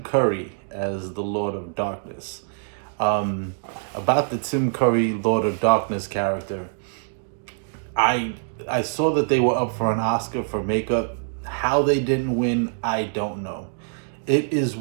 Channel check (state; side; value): silent; left; digital silence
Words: Curry as the Lord of Darkness. About the Tim Curry Lord of Darkness character, I I saw that they were up for an Oscar for makeup. How they didn't win, I don't know. It is